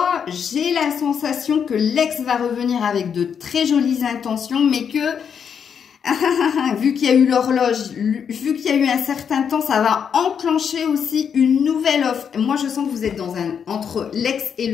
J'ai la sensation que l'ex va revenir avec de très jolies intentions, mais que, vu qu'il y a eu l'horloge, vu qu'il y a eu un certain temps, ça va enclencher aussi une nouvelle offre. Moi, je sens que vous êtes entre l'ex et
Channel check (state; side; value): quieter; right; 7.4 dB